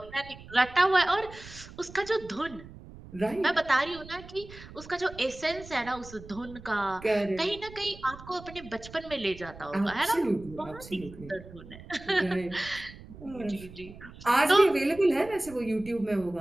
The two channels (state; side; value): noise; right; rumble, 17 dB below the sound